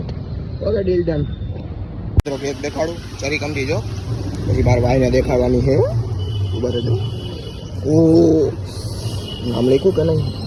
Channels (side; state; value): both; identical; correlation 1.00